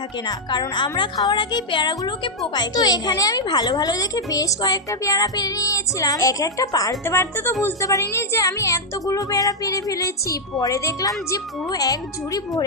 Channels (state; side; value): normal; both; correlation -0.03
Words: না, কারণ আমরা খাওয়ার আগেই পেয়ারাগুলোকে পোকায়। তো এখানে আমি ভালো ভালো দেখে বেশ কয়েকটা পেয়ারা পেরে নিয়েছিলাম। এক একটা পারতে পারতে তো বুঝতে পারিনি যে আমি এতগুলো পেয়ারা পেরে ফেলেছি। পরে দেখলাম যে পুরো এক ঝুড়ি